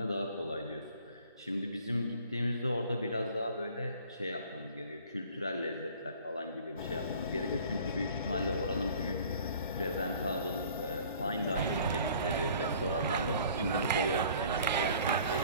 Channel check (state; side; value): inverted; both; correlation -0.51